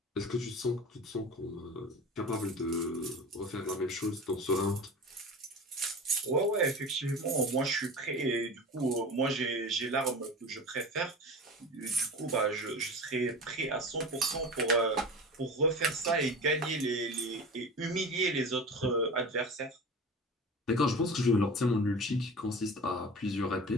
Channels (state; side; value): normal; both; correlation 0.33